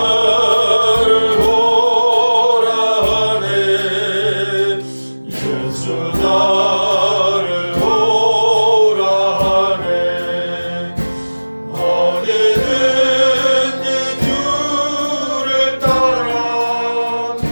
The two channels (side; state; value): both; inverted; correlation -1.00